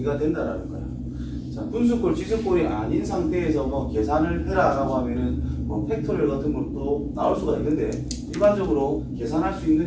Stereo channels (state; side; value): identical; both; correlation 1.00